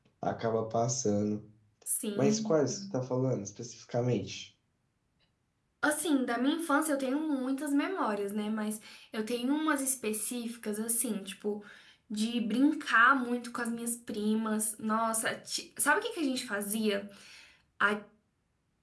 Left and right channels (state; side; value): identical; both; correlation 1.00